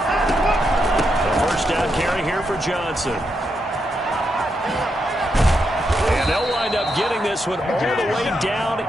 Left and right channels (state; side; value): normal; both; correlation 0.82